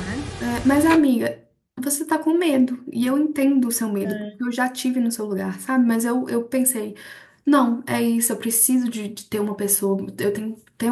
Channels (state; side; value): identical; both; correlation 1.00